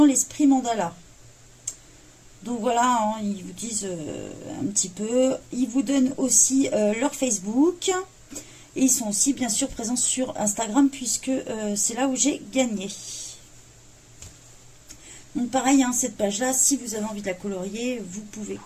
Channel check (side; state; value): both; identical; correlation 1.00